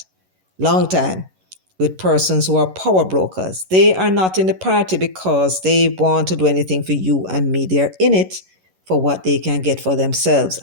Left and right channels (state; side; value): late; left; 11 ms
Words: long time with persons who are power brokers. They are not in the party because they want to do anything for you and me. They're in it for what they can get for themselves.